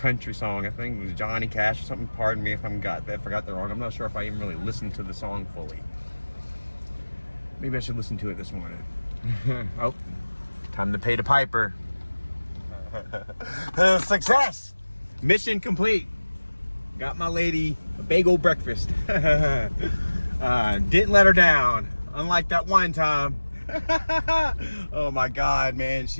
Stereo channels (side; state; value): both; inverted; correlation -1.00